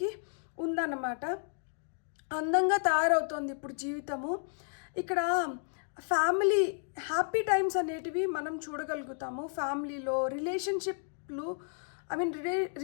ఉందన్నమాట. అందంగా తయారవుతోంది ఇప్పుడు జీవితము. ఇక్కడ ఫ్యామిలీ హ్యాపీ టైమ్స్ అనేటివి మనం చూడగలుగుతాము. ఫ్యామిలీలో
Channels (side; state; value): right; silent; 56 dB below the other